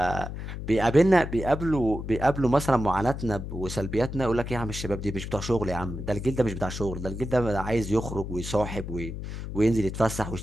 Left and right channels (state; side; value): noise; left; hum, 7 dB below the sound